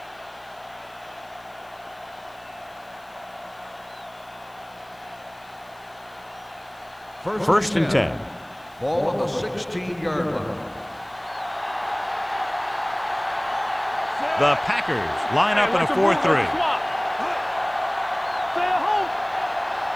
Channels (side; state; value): left; noise; hiss, 29 dB below the sound